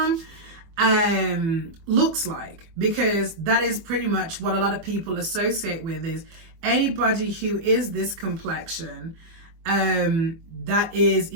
looks like, because that is pretty much what a lot of people associate with, is anybody who is this complexion that is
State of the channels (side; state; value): left; late; 24 ms